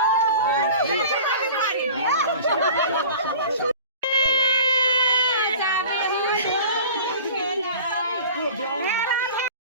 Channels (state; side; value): inverted; both; correlation -0.41